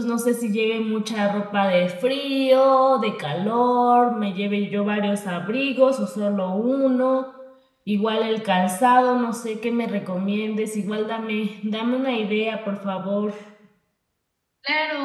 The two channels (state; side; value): identical; both; correlation 1.00